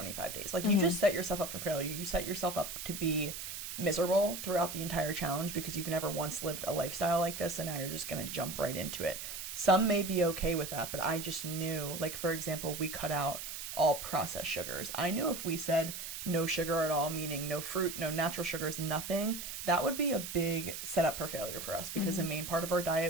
days. Like, you just set yourself up for failure. You set yourself up to be miserable throughout the entire challenge because you've never once lived a lifestyle like this, and now you're just going to jump right into it. Some may be okay with that, but I just knew, like, for example, we cut out all processed sugars. I knew if we said no sugar at all, meaning no fruit, no natural sugars, nothing, that would be a big setup for failure for us, because the main part of our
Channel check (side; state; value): right; noise; hiss, 7 dB below the sound